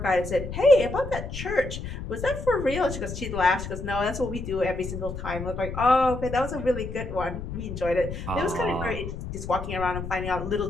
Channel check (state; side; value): noise; left; rumble, 7 dB below the sound